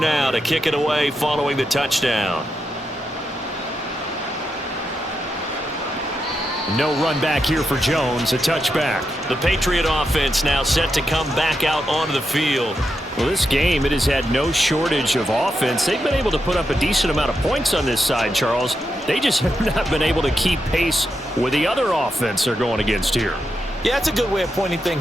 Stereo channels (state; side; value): normal; both; correlation 0.85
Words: to kick it away following the touchdown. No run back here for Jones, a touchback. The Patriot offense now set to come back out onto the field. Well, this game, it has had no shortage of offense. They've been able to put up a decent amount of points on this side, Charles. They just have not been able to keep pace with the other offense they're going against here. Yeah, it's a good way of pointing